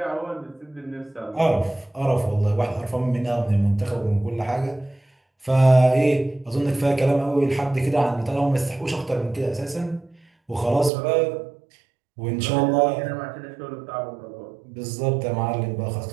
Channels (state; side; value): drops out; left; at 10.9 s